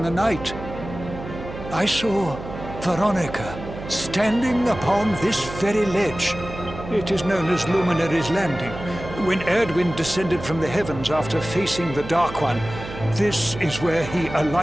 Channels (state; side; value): noise; right; hum, 11 dB below the sound